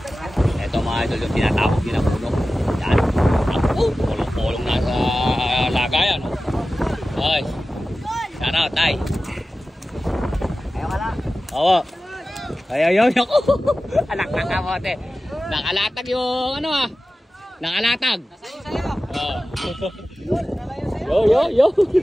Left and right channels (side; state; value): both; normal; correlation 0.95